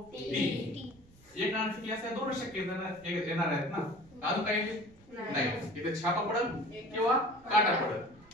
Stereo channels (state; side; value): noise; right; rumble, 26 dB below the sound